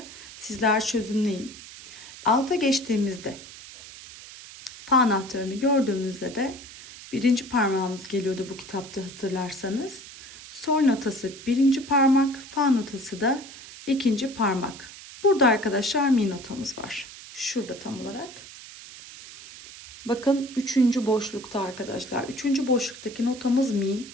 Sizler çözümleyin. Alta geçtiğimizde fa anahtarını gördüğümüzde de birinci parmağımız geliyordu bu kitapta, hatırlarsanız. Sol notası birinci parmak, fa notası da ikinci parmak. Burada arkadaşlar mi notamız var. Şurada tam olarak. Bakın 3. boşlukta arkadaşlar. 3. boşluktaki notamız mi.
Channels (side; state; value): right; noise; hiss, 16 dB below the sound